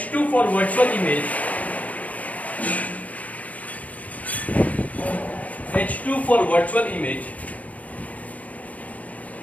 for virtual image. H2 for virtual image.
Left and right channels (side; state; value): right; late; 0.071 ms